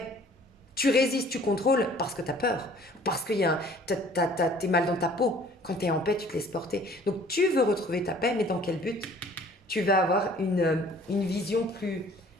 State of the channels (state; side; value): normal; both; correlation 0.53